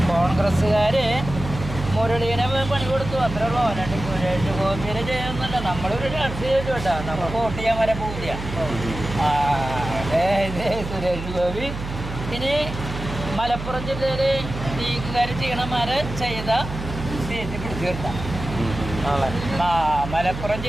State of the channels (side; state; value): right; noise; hum, 8 dB below the sound